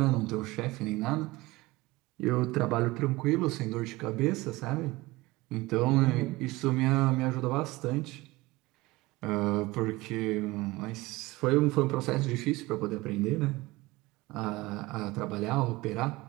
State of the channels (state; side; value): quieter; left; 20.6 dB